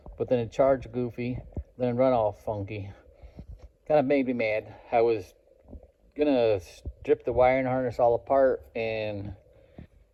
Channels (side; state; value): both; identical; correlation 1.00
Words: But then it charged goofy, then it'd run all funky. Kind of made me mad. I was gonna strip the wiring harness all apart and